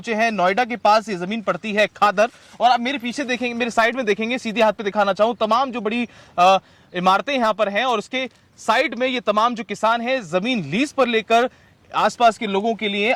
हैं नोएडा के पास। ये जमीन पड़ती है खादर, और आप मेरे पीछे देखेंगे, मेरे साइड में देखेंगे, सीधे हाथ पे दिखाना चाहूं, तमाम जो बड़ी इमारतें यहां पर हैं और उसके साइड में ये तमाम जो किसान हैं जमीन लीज पर लेकर आसपास के लोगों के लिए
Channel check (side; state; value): both; identical; correlation 1.00